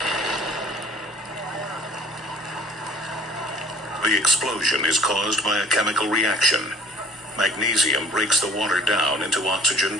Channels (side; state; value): both; normal; correlation 0.50